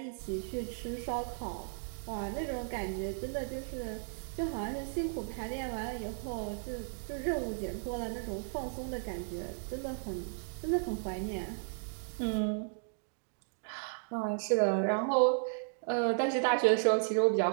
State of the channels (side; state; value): left; silent; digital silence